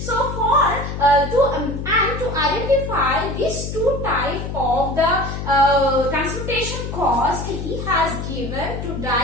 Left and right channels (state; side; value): noise; left; hum, 6 dB below the sound